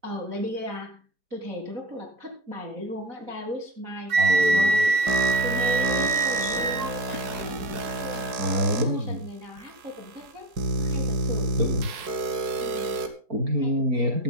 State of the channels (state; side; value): late; left; 4.7 ms